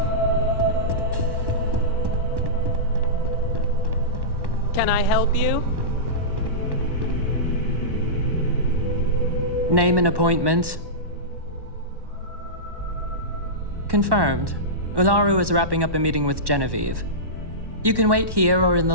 Can I help you? Name and appointment. Confirmed. Ularu is wrapping up a meeting with Genevieve. You can wait here or in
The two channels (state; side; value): late; left; 1.1 ms